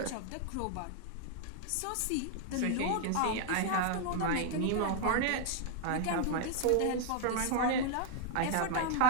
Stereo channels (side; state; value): both; different; correlation 0.00